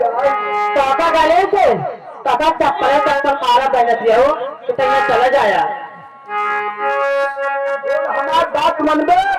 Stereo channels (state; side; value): identical; both; correlation 1.00